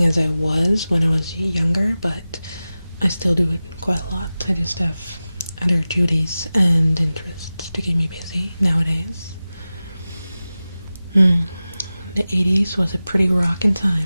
as I was when I was younger, but I still do it quite a lot. I just have other duties and interests to keep me busy nowadays. The 80s was a pretty rockin'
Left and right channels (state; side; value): inverted; both; correlation -0.96